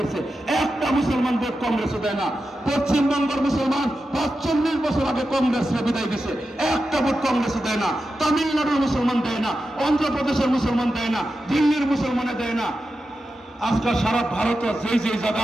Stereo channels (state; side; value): normal; both; correlation 0.90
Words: একটা মুসলমান ভোট কংগ্রেসে দেয় না। পশ্চিমবঙ্গের মুসলমান 45 বছর আগে কংগ্রেসরা বিদায় দিছে, একটা ভোট কংগ্রেসে দেয় না। তামিলনাড়ুর মুসলমান দেয় না, অন্ধ্রপ্রদেশের মুসলমান দেয় না, দিল্লির মুসলমানে দেয় না। আজকাল সারা ভারতে যেই